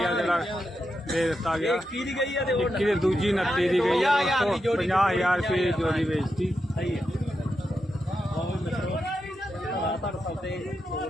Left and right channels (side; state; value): both; normal; correlation 0.87